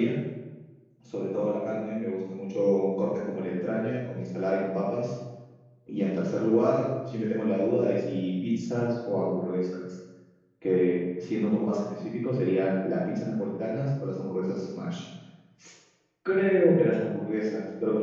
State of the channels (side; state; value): both; identical; correlation 1.00